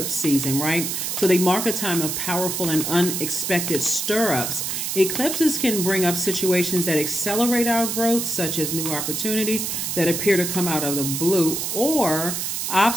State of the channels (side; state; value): right; noise; hiss, 2 dB below the sound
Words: season, right? So they mark a time of powerful and unexpected stir-ups. Eclipses can bring up situations that accelerate our growth, such as new opportunities that appear to come out of the blue, or